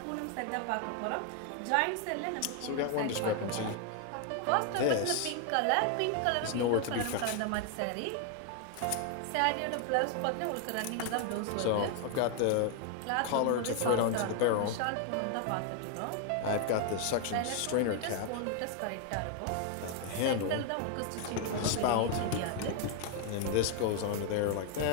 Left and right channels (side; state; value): both; different; correlation 0.00